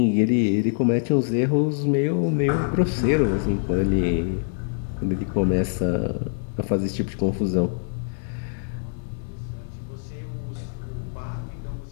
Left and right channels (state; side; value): silent; right; 62 dB below the other